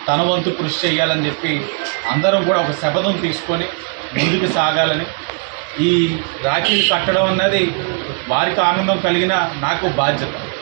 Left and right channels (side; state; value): left; quieter; 39.1 dB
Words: తన వంతు కృషి చేయాలని చెప్పి అందరం కూడా ఒక శపథం తీసుకొని ముందుకు సాగాలని. ఈ రాఖీలు కట్టడం అన్నది వారికి ఆనందం కలిగిన నాకు బాధ్యత.